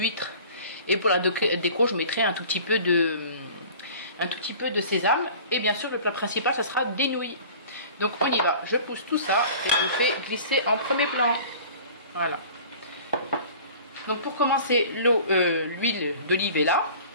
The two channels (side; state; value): both; inverted; correlation -0.44